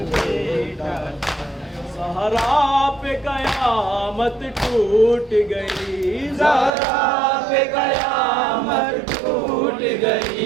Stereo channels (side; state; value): left; drops out; at 6.7 s